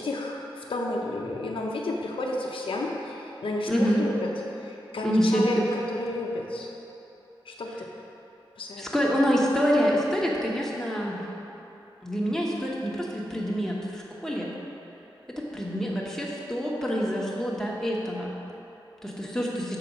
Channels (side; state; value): both; normal; correlation 0.86